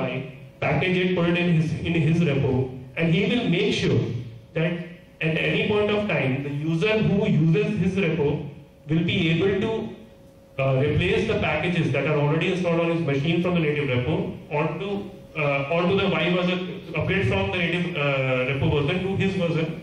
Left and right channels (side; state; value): both; identical; correlation 1.00